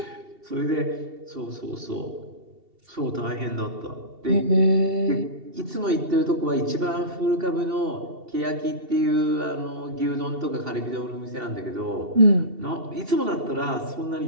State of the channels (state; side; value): late; left; 2.7 ms